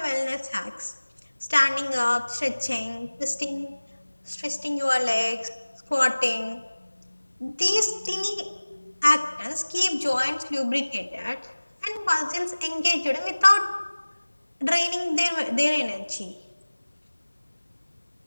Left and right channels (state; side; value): inverted; both; correlation -1.00